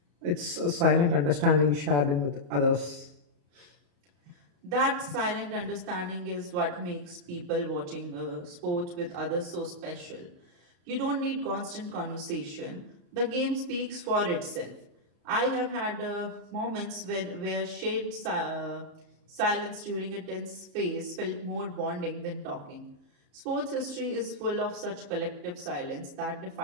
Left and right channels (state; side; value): late; left; 34 ms